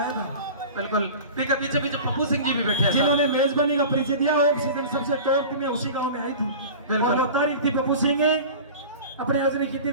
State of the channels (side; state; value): both; inverted; correlation -0.36